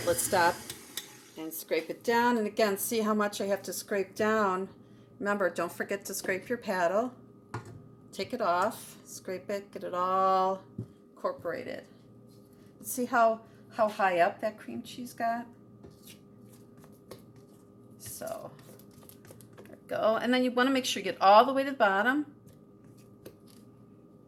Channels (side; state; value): both; identical; correlation 1.00